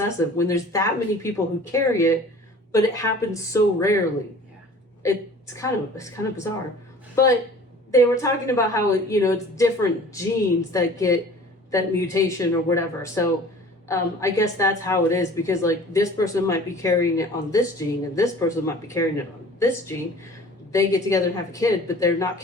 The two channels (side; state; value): both; normal; correlation 0.46